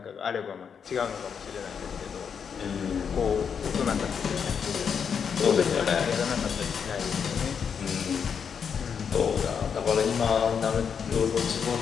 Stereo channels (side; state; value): right; quieter; 6.9 dB